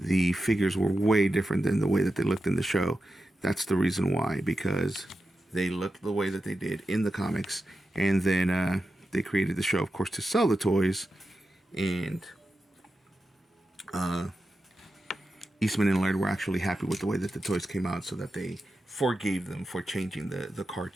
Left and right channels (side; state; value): both; normal; correlation 0.91